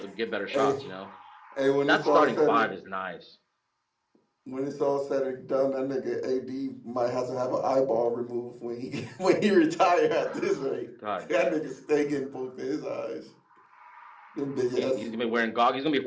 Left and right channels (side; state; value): both; identical; correlation 1.00